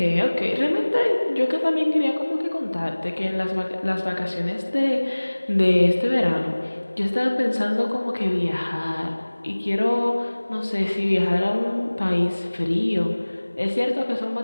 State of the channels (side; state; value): both; inverted; correlation -1.00